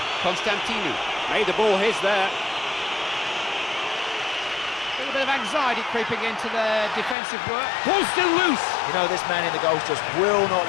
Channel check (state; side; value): drops out; right; at 7.2 s